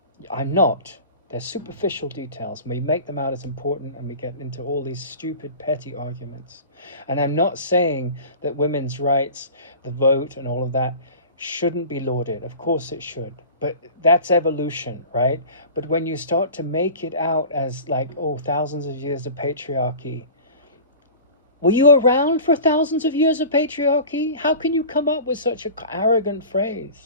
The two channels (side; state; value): both; inverted; correlation -0.38